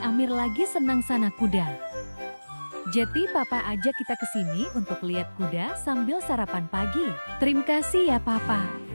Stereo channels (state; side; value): inverted; both; correlation -1.00